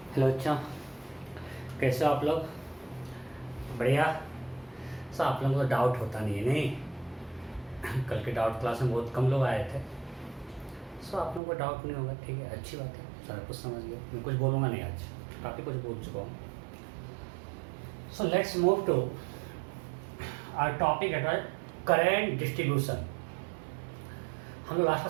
Hello अच्छा, कैसे हो आप लोग? बढ़िया। सर आप लोगों को तो डाउट होता नहीं है नहीं? कल के डाउट क्लास में बहुत कम लोग आए थे। सो आप लोगों को डाउट नहीं होगा, ठीक है, अच्छी बात है। सारा कुछ समझ गया, मैं कुछ बोलूँगा नहीं आज, काफ़ी कुछ बोल चुका हूँ। So let's move to our topic at current distribution. हम लोग लास्ट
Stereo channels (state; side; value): drops out; left; at 11.4 s